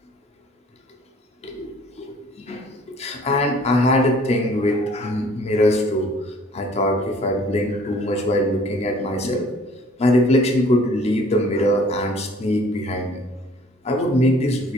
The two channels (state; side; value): normal; both; correlation 0.54